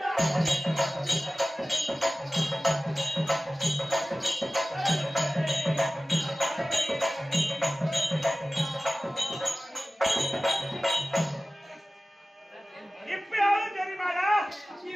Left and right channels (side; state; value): both; normal; correlation 0.96